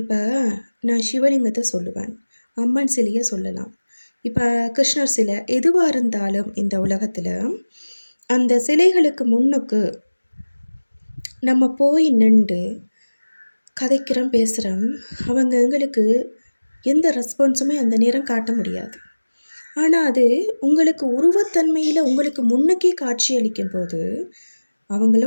நான் சிவலிங்கத்தை சொல்லுவேன், அம்மன் சிலையை சொல்லலாம், இப்போ கிருஷ்ணர் சிலை, எதுவாக இருந்தாலும் இந்த உலகத்தில் அந்த சிலைகளுக்கு முன்னுக்கு நம்ம போய் நின்று கதைக்கிறோம், பேசுகிறோம். அவங்க எங்களுக்கு எந்த ரெஸ்பான்ஸுமே அந்த நேரம் காட்ட முடியாது. ஆனால் அது உங்களுக்கு உருவத்தன்மையில் உங்களுக்கு முன்னுக்கே காட்சி அளிக்கும் போது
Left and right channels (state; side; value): inverted; both; correlation -1.00